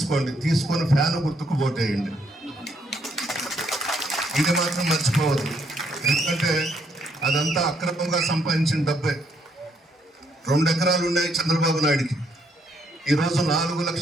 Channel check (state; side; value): normal; both; correlation 0.72